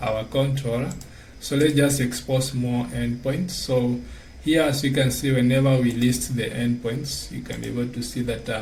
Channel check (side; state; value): both; identical; correlation 1.00